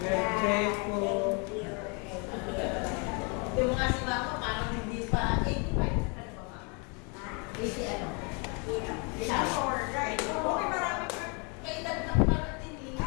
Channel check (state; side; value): quieter; right; 33.9 dB